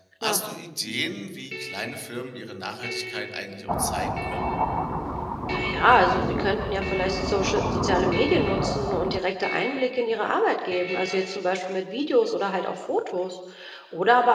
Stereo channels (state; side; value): identical; both; correlation 1.00